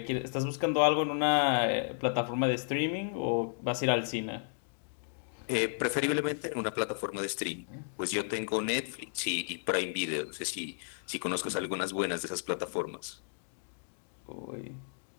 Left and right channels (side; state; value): right; silent; digital silence